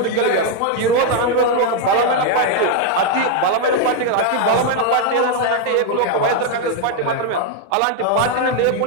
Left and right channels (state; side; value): different; both; correlation 0.00